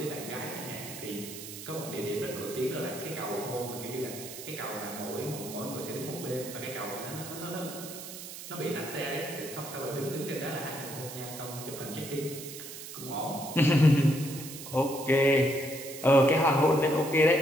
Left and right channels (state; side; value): noise; right; hiss, 11 dB below the sound